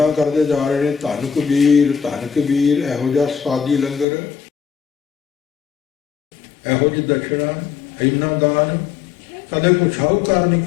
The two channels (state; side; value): drops out; right; at 4.0 s